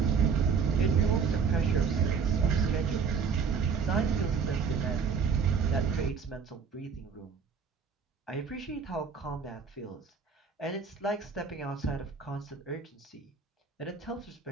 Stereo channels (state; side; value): quieter; left; 5.9 dB